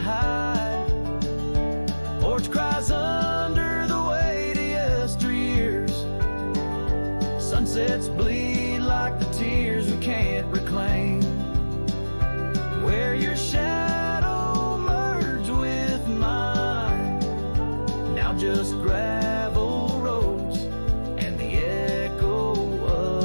Porch cries under the weight of yesteryears. Sunsets bleed like the tears we can't reclaim. Where your shadow merged with mine, now just gravel roads and the echo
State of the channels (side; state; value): both; inverted; correlation -1.00